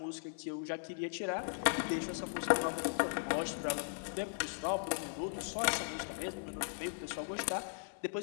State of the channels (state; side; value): silent; right; 53 dB below the other